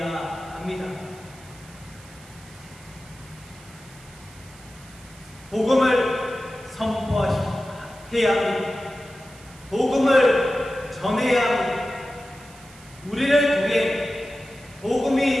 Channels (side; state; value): right; noise; hiss, 22 dB below the sound